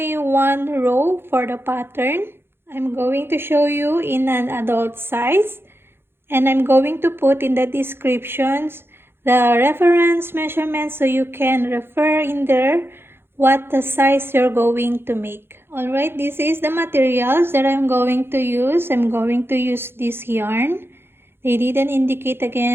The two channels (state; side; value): late; left; 0.11 ms